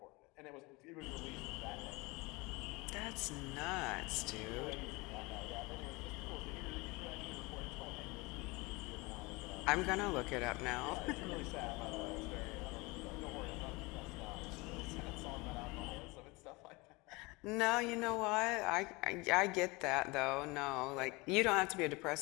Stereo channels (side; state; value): right; quieter; 24.8 dB